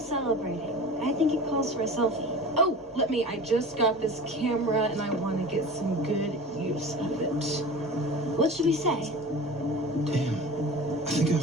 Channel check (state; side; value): normal; both; correlation 0.36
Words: I think it calls for a selfie. Oh, I just got this camera and I want to get some good use of it. What should we say? Damn, I think I